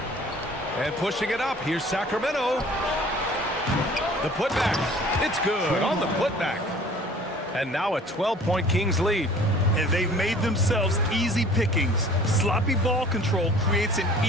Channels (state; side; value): normal; both; correlation 0.49